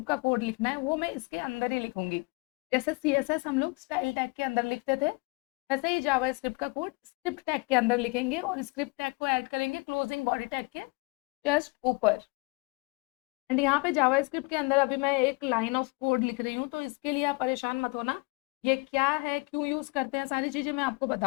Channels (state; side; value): quieter; right; 28.5 dB